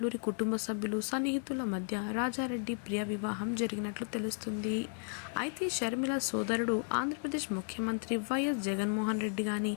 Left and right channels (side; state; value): right; silent; 55 dB below the other